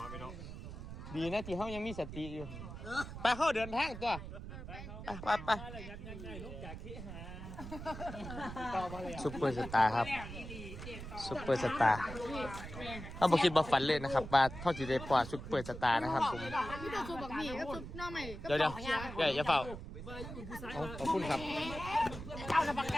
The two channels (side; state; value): right; noise; rumble, 10 dB below the sound